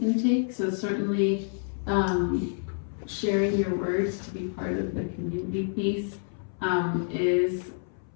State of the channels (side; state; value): right; silent; 59 dB below the other